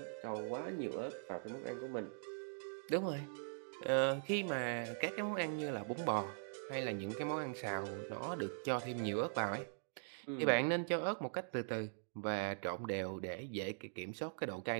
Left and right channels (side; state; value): left; silent; digital silence